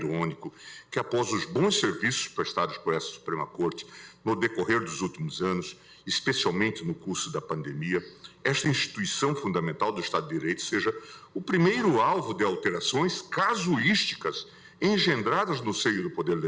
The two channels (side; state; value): both; identical; correlation 1.00